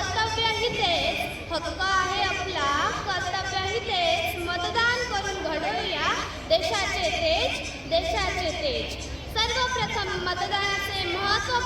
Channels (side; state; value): both; identical; correlation 1.00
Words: तेच. हक्क आहे आपला, कर्तव्यही तेच. मतदान करून घडवूया देशाचे तेज, देशाचे तेज. सर्वप्रथम मतदानाचे